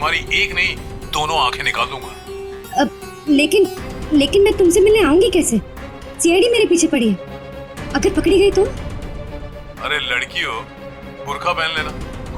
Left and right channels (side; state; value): both; identical; correlation 1.00